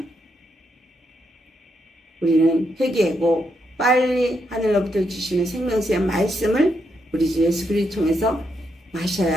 우리는 회개하고 빨리 하늘로부터 주시는 생명수의 말씀을 우리 주 예수 그리스도 통해서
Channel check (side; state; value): both; normal; correlation 0.80